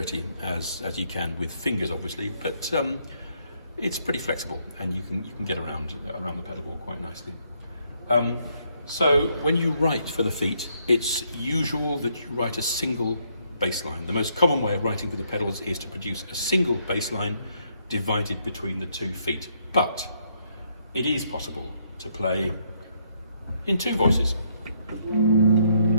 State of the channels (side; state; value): both; inverted; correlation -0.72